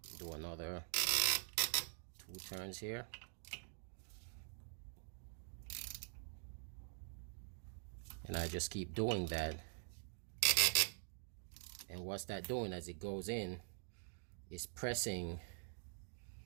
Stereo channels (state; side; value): silent; left; digital silence